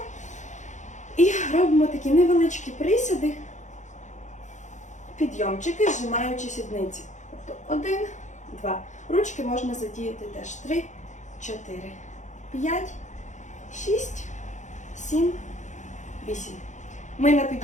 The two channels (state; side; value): late; right; 0.35 ms